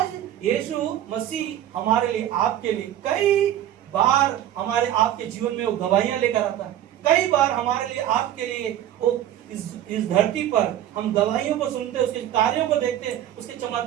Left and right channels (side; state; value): left; quieter; 11.8 dB